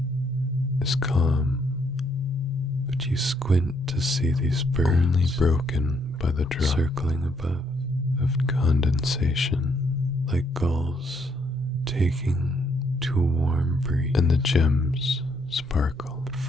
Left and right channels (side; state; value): right; noise; hum, 24 dB below the sound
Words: is calm, but you squint to see these birds only broken by the drop circling above of condensation, like gulls taking to a warm breeze, and the gems sparkle